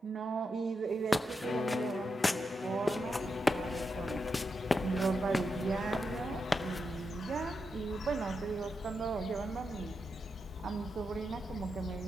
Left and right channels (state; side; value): normal; both; correlation 0.86